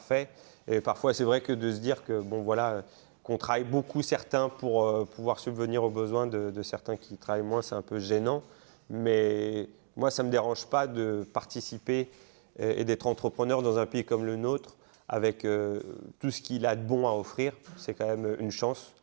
Et parfois, c'est vrai que de se dire que bon voilà, qu'on travaille beaucoup certains pour pouvoir subvenir aux besoins de certains qui travaillent moins, c'est un peu gênant. Mais moi, ça ne me dérange pas de participer et d'être entrepreneur dans un pays comme le nôtre avec tout ce qu'il a de bon à offrir. C'est quand même une chance.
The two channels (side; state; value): left; silent; 56 dB below the other